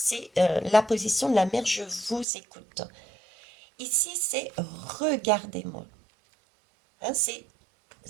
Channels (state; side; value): drops out; left; at 2.2 s